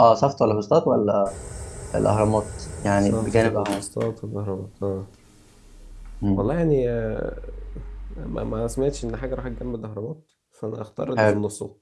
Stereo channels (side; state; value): both; identical; correlation 1.00